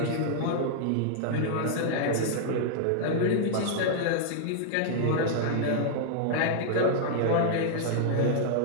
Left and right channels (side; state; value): both; different; correlation -0.01